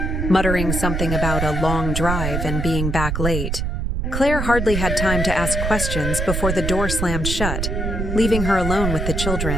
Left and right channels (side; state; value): right; noise; rumble, 1 dB below the sound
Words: muttering something about a long drive and being back late. Claire hardly had time to ask questions before the door slammed shut, leaving her alone with the